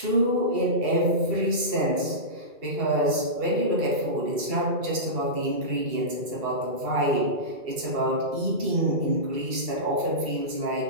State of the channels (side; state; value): left; late; 2.3 ms